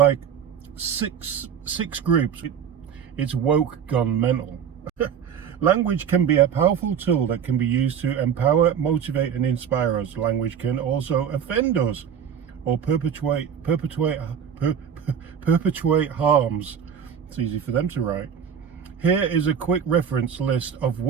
six groups. It's woke gone mental. Language can be a powerful tool that can be used to empower, motivate, and inspire us. Language can also offend us or perpetuate harms. It's easy for them to write. Here is a quick reference list of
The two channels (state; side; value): quieter; left; 7.9 dB